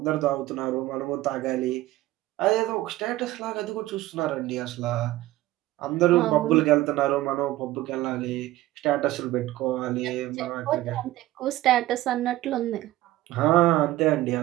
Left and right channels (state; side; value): quieter; left; 16.4 dB